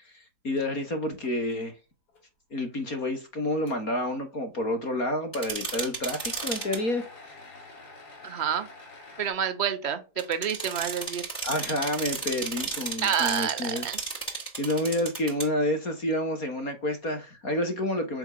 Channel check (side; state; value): right; late; 3.3 ms